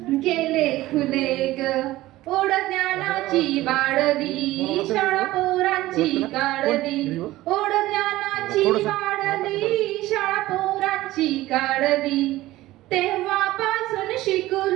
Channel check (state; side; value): quieter; left; 16.9 dB